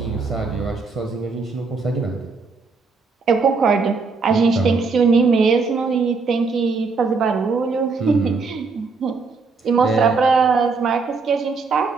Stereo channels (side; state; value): left; quieter; 4.5 dB